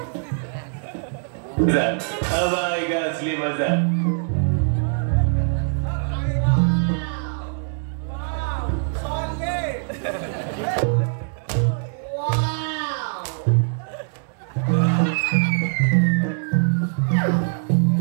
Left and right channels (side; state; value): left; silent; 63 dB below the other